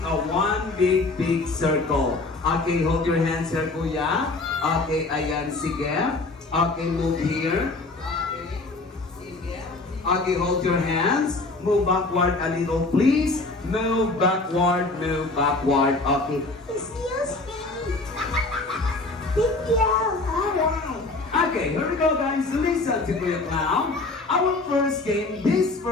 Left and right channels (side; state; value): right; quieter; 3.3 dB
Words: a one big circle. Okay, hold your hands here, kuya. Okay, ayan, sige. Okay, move here. Okay, sige. Okay, hold your hands. Move backward a little, please. Move backward. Okay. Excuse me. Thank you. Alright. Okay, here we go, guys. Listen to Kuya Clown. Our first game, this